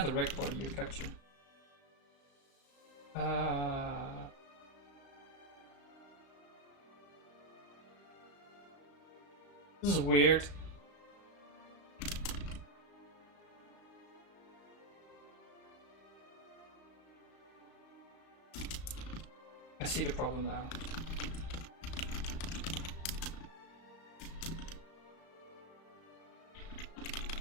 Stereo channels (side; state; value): right; late; 35 ms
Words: a reg body, you capture. This is weird. I see the problem now.